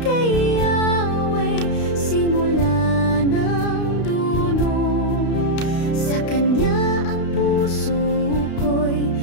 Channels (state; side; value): late; right; 32 ms